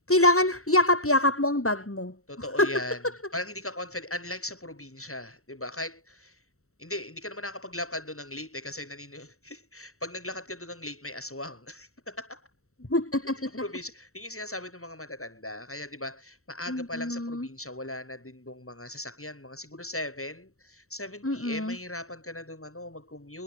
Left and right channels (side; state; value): right; late; 0.64 ms